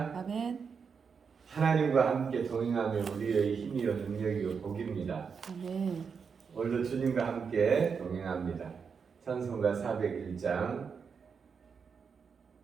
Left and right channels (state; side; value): quieter; left; 6.0 dB